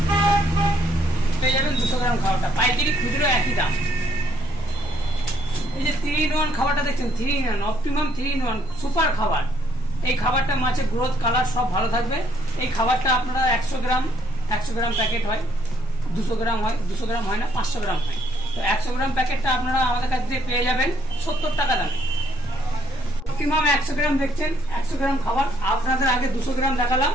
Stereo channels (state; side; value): normal; both; correlation 0.69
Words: পেয়ে যাবেন 200 গ্রাম খাবারটা, পাইকারি খুচরো একই দাম। এই যে 3-in-1 খাবারটা দেখছেন, 3-in-1 অপটিমাম 3-in-1 সুপার খাবার। এই খাবারটা মাছের গ্রোথ কালার সব ভালো থাকবে। এই খাবারটা আপনারা 100 গ্রাম প্যাকেট হয়, 200 গ্রাম হয়, 200 গ্রাম হয় না, 500 গ্রাম হয়। তো 100 গ্রাম প্যাকেটটা আপনারা আমাদের কাছ থেকে পেয়ে যাবেন 70 টাকা দামে। অপটিমাম 100 গ্রাম দেখছেন, 100 গ্রাম খাবার আপনাদের আগে 200 গ্রাম দেখালাম,